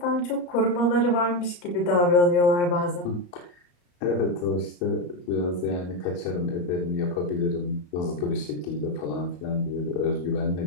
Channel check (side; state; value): right; late; 34 ms